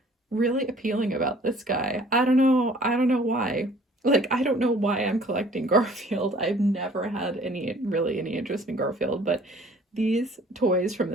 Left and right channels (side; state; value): both; normal; correlation 0.54